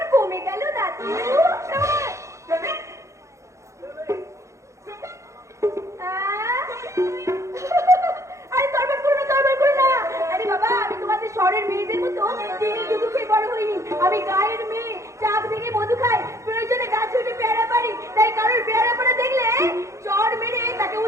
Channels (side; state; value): left; late; 0.14 ms